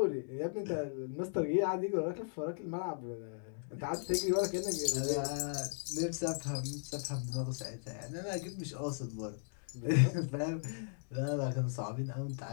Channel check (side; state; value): right; silent; digital silence